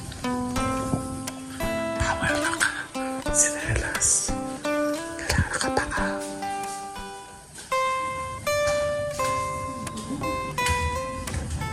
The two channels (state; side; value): identical; both; correlation 1.00